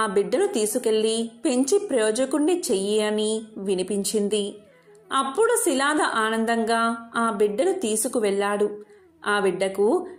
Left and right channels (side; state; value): both; identical; correlation 1.00